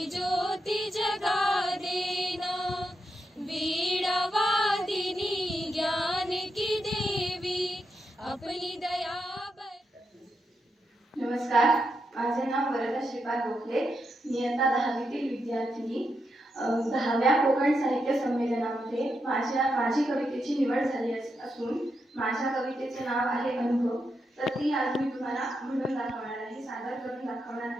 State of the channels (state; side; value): normal; both; correlation 0.83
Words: ज्योति जगा देना। वीणा वादिनी ज्ञान की देवी अपनी दया। नमस्कार, माझे नाव वरदा श्रीपाद गोखले. मी आता 10वीतील विद्यार्थिनी. 10व्या कोकण साहित्य संमेलनामध्ये माझी कवितेची निवड झाली असून माझ्या कवितेचे नाव आहे अनुभव. तर ती आज मी तुम्हाला म्हणून दाखवणार आहे, सादर करून दाखवणार